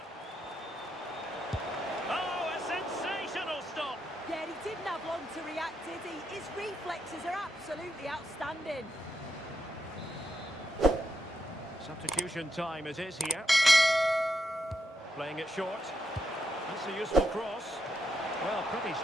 Oh, a sensational stop. Yeah, he didn't have long to react, did he? His reflexes are absolutely outstanding. Substitution time it is here. Playing it short. That's a useful cross. Well, pretty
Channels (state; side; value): normal; both; correlation 0.82